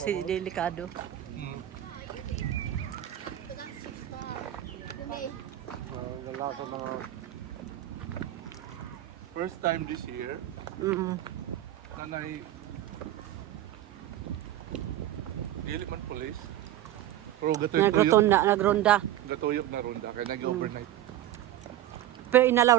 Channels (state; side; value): quieter; left; 13.0 dB